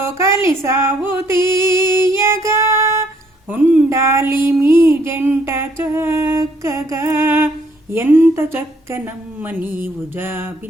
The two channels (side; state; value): both; normal; correlation 0.67